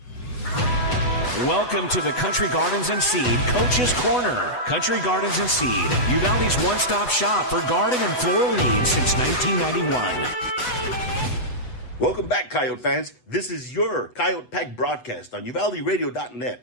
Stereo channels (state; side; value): late; right; 8.0 ms